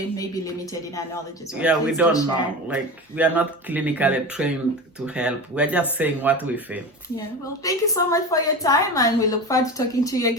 may be limited in our knowledge as well. Yeah, Please we don't know. Like, we are not clinically trained to help. We're just saying what we feel. Yeah, well, thank you so much for your time, and we look forward to talking to you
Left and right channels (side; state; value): both; normal; correlation 0.28